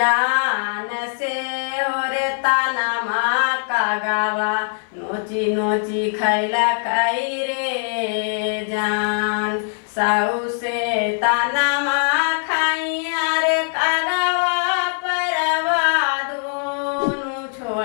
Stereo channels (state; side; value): silent; right; 65 dB below the other